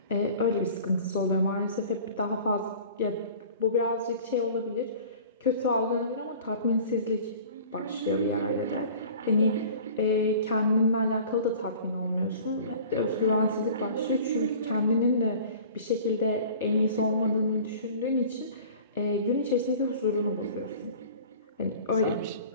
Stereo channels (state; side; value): inverted; both; correlation -0.44